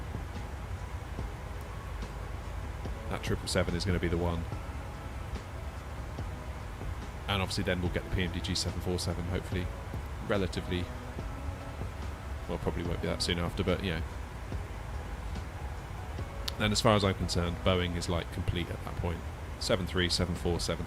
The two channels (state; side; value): identical; both; correlation 1.00